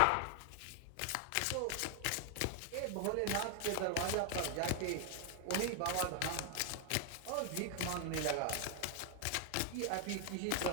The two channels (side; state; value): both; different; correlation 0.00